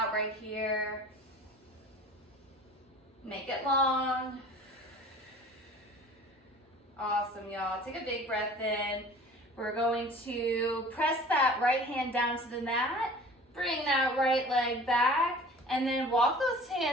right here. Make it long. Awesome, y'all. Take a big breath in. We're going to press that right hand down to the mat. Bring that right leg back. And then walk those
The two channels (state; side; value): normal; both; correlation 0.45